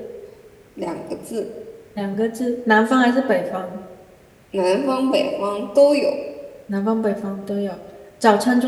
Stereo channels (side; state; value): both; identical; correlation 1.00